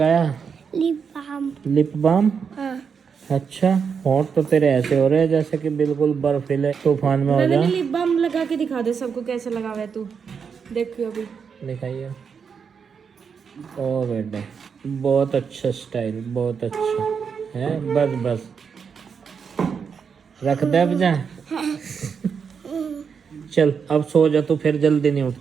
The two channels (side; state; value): left; quieter; 6.3 dB